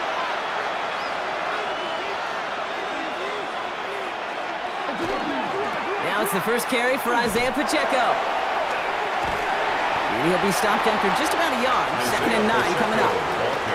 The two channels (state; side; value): identical; both; correlation 1.00